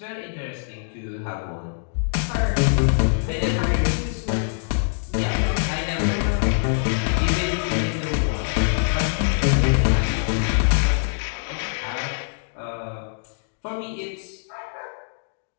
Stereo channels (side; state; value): right; silent; digital silence